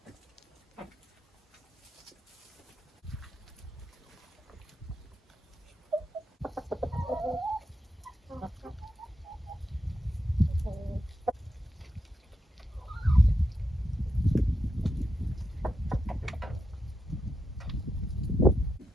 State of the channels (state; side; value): normal; both; correlation 0.85